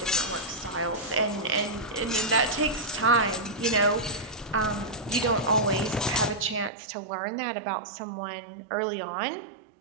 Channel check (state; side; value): drops out; left; at 6.7 s